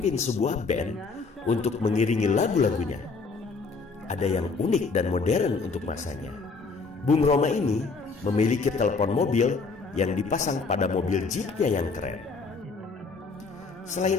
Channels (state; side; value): quieter; right; 4.3 dB